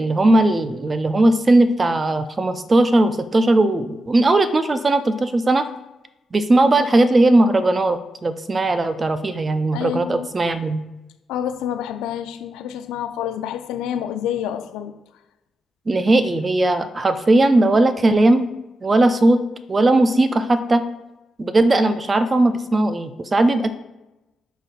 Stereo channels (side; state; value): both; normal; correlation 0.91